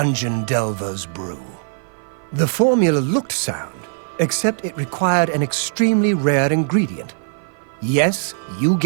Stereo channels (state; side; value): silent; left; 55 dB below the other